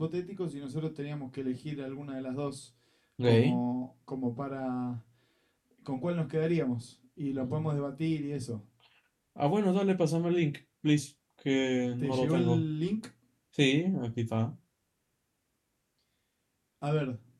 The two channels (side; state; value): both; identical; correlation 1.00